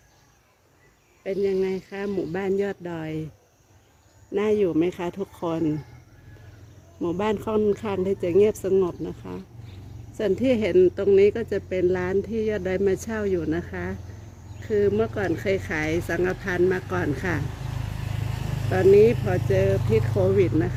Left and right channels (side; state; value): both; identical; correlation 1.00